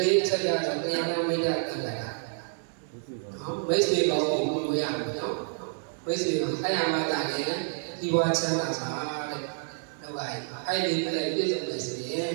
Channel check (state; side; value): silent; left; digital silence